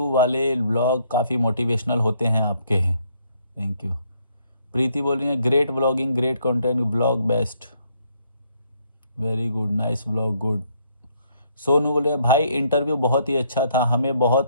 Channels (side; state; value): both; inverted; correlation -0.69